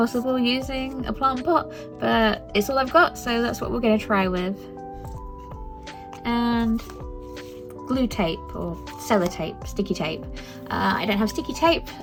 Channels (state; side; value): identical; both; correlation 1.00